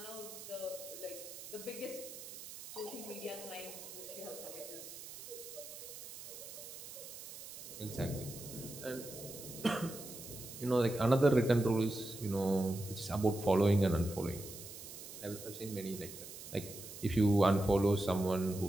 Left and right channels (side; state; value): right; noise; hiss, 12 dB below the sound